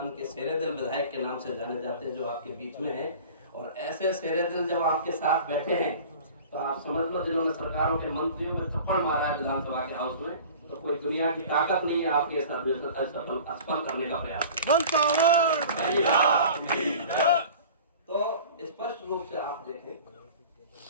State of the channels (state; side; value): inverted; both; correlation -0.41